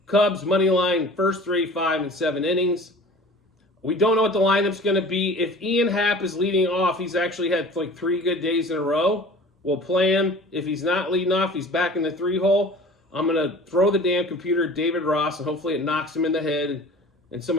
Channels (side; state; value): both; normal; correlation 0.42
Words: Cubs money line, first 3, 5, and 7 innings. We don't know what the lineup's going to be. If Ian Happ is leading off, he's actually had like 3 good days in a row. We'll play him. If he's not leading off, he's back in the 3-hole. I'm going to throw the damn computer at David Ross, and hopefully it knocks him in the head, and